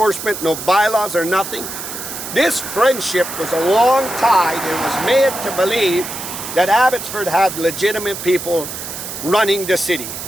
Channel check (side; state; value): right; noise; hiss, 8 dB below the sound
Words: no bylaws or nothing. This friendship was a long tide and was made to believe that Abbotsford had legitimate people running the city.